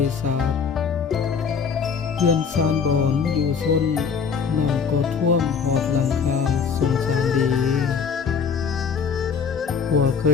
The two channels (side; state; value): right; quieter; 6.2 dB